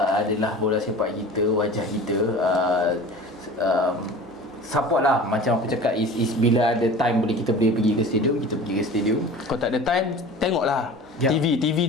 adalah bola sepak kita, wajah kita. Support lah, macam aku cakap, is bila ada time kita boleh pergi ke stadium, kita pergi ke stadium. Kalau tak ada time, tengoklah TV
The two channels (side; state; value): both; normal; correlation 0.39